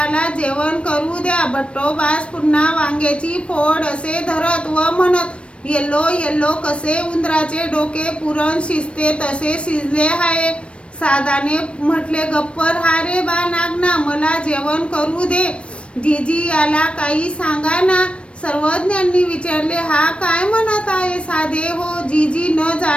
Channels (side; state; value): right; late; 0.060 ms